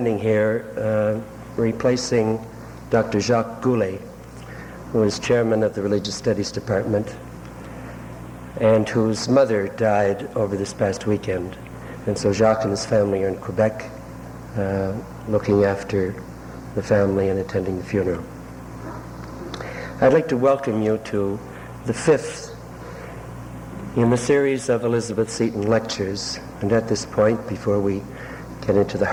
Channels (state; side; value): identical; both; correlation 1.00